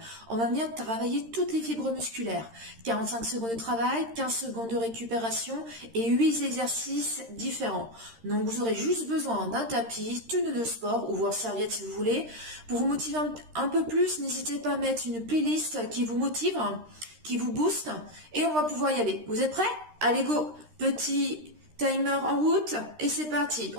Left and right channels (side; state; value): left; late; 13 ms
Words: On va venir travailler toutes les fibres musculaires. 45 secondes de travail, 15 secondes de récupération et 8 exercices différents. Donc vous aurez juste besoin d'un tapis, tenue de sport ou voire serviette si vous voulez. Pour vous motiver un peu plus, n'hésitez pas à mettre une playlist qui vous motive, qui vous booste et on va pouvoir y aller. Vous êtes prêts? Allez go! Petit timer en route et c'est parti.